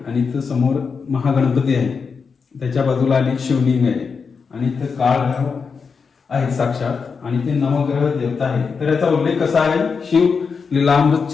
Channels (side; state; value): right; quieter; 5.4 dB